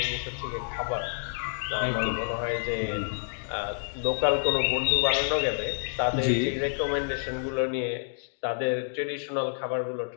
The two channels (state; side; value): silent; right; digital silence